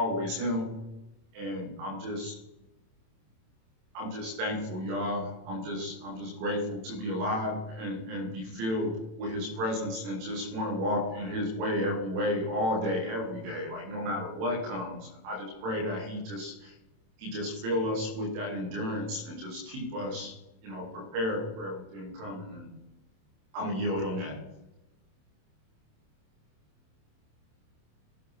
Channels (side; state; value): left; late; 27 ms